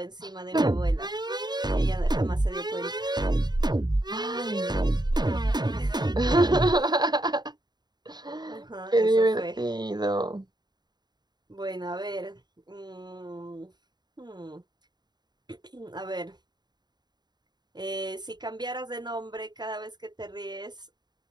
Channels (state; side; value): late; left; 0.20 ms